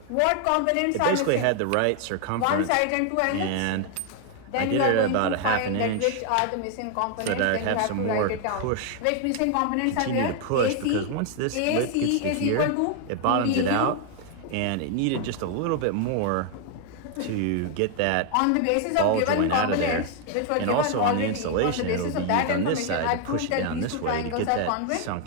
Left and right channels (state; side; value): different; both; correlation 0.01